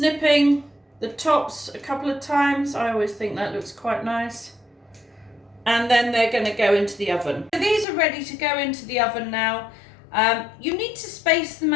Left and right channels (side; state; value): right; drops out; at 7.9 s